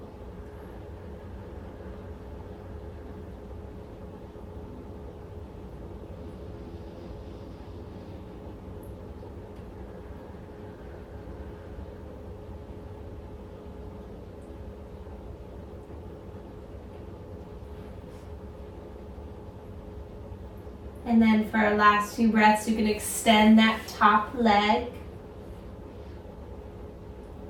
And then for our last few breaths, you can extend that top leg.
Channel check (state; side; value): identical; both; correlation 1.00